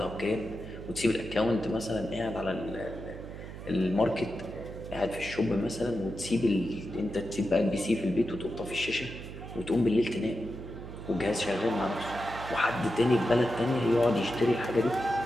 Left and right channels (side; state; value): right; noise; hum, 11 dB below the sound